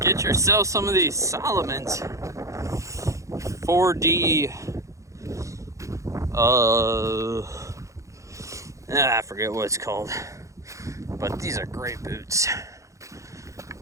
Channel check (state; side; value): late; left; 0.15 ms